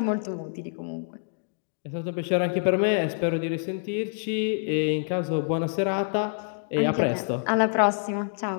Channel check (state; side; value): silent; right; digital silence